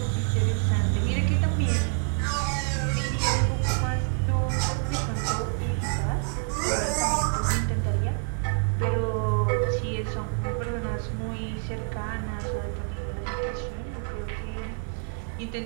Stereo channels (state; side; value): silent; left; 55 dB below the other